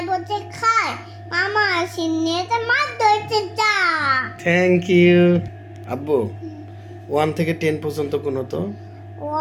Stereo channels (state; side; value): identical; both; correlation 1.00